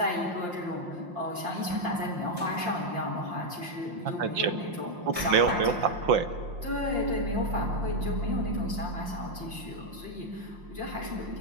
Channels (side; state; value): left; late; 5.7 ms